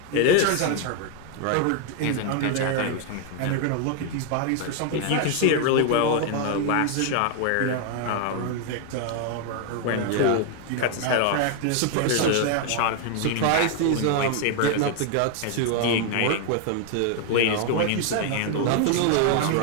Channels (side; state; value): both; different; correlation 0.00